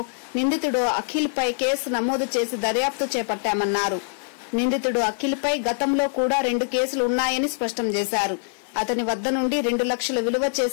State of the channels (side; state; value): right; silent; 63 dB below the other